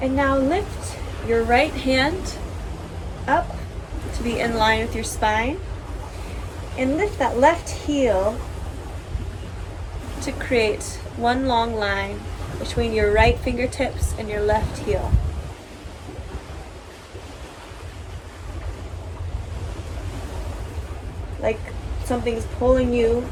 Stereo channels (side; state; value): both; identical; correlation 1.00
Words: And now lift your right hand up to be in line with your spine. And lift that left heel to create one long line between your right fingertips and your left heel. Like something's pulling you